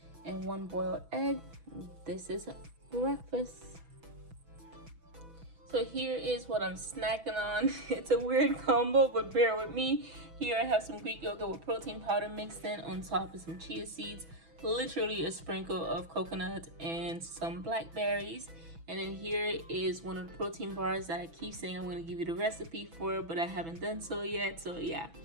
and 1 boiled egg. This is breakfast. So here is what I'm snacking on. It's a weird combo, but bear with me. Here I have some Greek yogurt with protein powder mixed in. On top is some chia seeds, literally a sprinkle of coconut, and some blackberries. And then here is one of the protein bars that I keep saying I'm going to give you the recipe for, but I haven't done so yet. So yeah.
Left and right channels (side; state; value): left; late; 6.1 ms